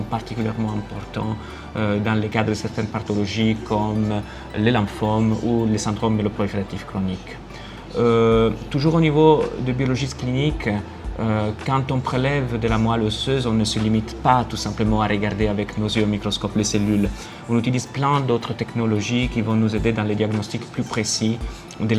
particulièrement importantes dans le cadre de certaines pathologies comme les lymphomes ou les syndromes myeloprolifératifs chroniques. Toujours au niveau de biologiste clinique, quand on prélève de la moelle osseuse, on ne se limite pas tout simplement à regarder avec nos yeux au microscope les cellules. On utilise plein d'autres technologies qui vont nous aider dans les diagnostics plus précis de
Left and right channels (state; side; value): identical; both; correlation 1.00